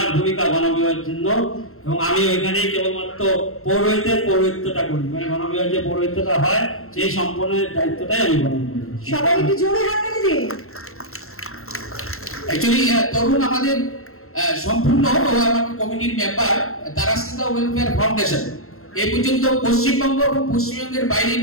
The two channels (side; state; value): right; late; 0.62 ms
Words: ভূমিকা গণবিবাহের জন্য, এবং আমি ওইখানে কেবলমাত্র পৌরোহিত্যটা করি, মানে গণবিবাহের যে পৌরোহিত্যটা হয় সেই সম্পূর্ণ দায়িত্বটাই আমি গ্রহণ করি। সবাই একটু জোরে হাততালি দিন। অ্যাকচুয়ালি তরুণ আমাদের সম্পূর্ণ আমাদের কমিটির মেম্বার তারাশ্রিতা ওয়েলফেয়ার ফাউন্ডেশন এই পর্যন্ত পশ্চিমবঙ্গ এবং পশ্চিমবঙ্গের বাইরে